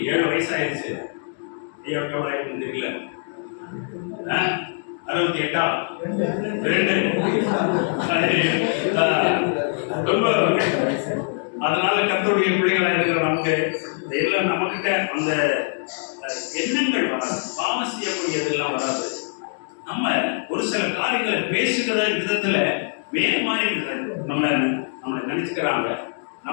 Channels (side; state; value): right; silent; 62 dB below the other